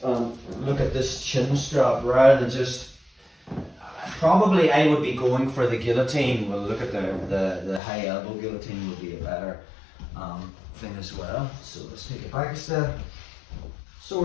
look at this chin strap rather than just, probably I would be going for the guillotine. We'll look at the high elbow guillotine would be a better thing as well. So let's take it back a step. So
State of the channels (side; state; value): right; drops out; at 7.8 s